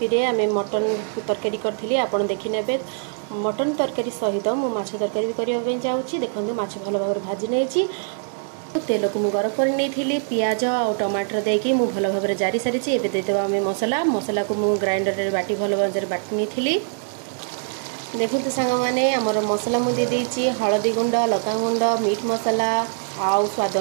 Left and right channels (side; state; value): left; silent; digital silence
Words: रे आमे मटन तरकारी करथिली आपण देखि नेबे। मटन तरकारी सहित मु माछ तरकारी भी करिया पे जाउची। देखंतु माछ भलो भाबरे भाजी नेची, तेल को मु गरम कर नहीं पियाज और टमाटर देकी मु भलो भाबरे जारी सारी। एबे देदेबा आमे मसला को मु ग्राइंडर रे बाटी भलो भाबरे बाटी नहीं। देखते सांग माने आमर मसला मु दे देची, हळदी गुंड, लका गुंड, मीट मसला आउ स्वाद